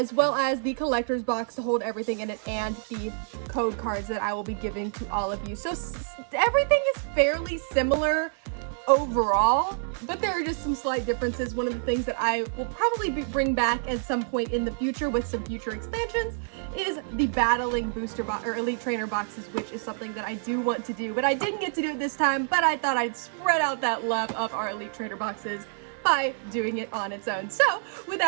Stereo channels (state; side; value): silent; left; 60 dB below the other